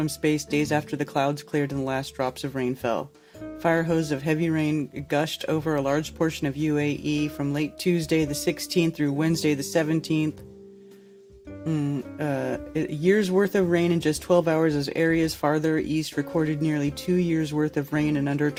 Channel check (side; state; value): both; identical; correlation 1.00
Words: space days after the clouds cleared and the last drops of rain fell. Fire hose of heavy rain gushed over a large portion of UAE from late Tuesday the 16th through Wednesday the 17th. A year's worth of rain in just 12 hours as areas farther east recorded nearly 2 years worth of rain in under